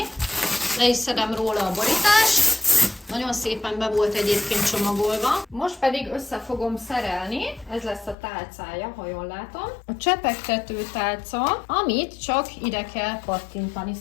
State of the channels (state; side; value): drops out; right; at 8.2 s